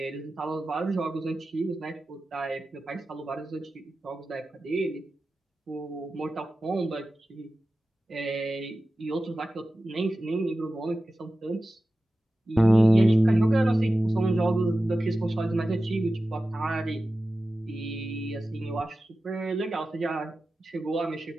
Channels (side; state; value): both; normal; correlation 0.94